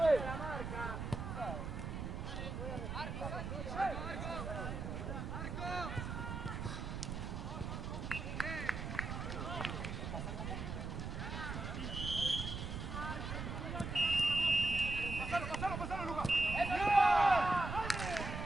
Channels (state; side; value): noise; right; rumble, 5 dB below the sound